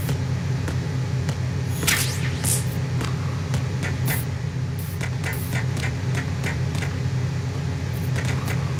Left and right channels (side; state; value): both; identical; correlation 1.00